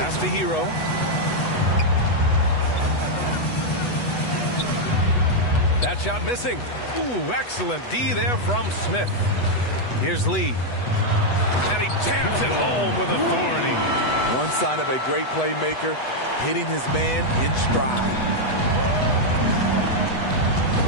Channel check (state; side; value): late; right; 8.1 ms